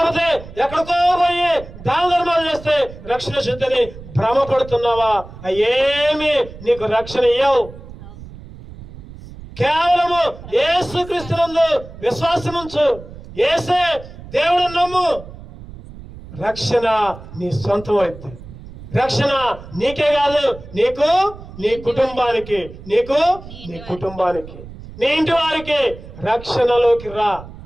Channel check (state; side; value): noise; right; rumble, 16 dB below the sound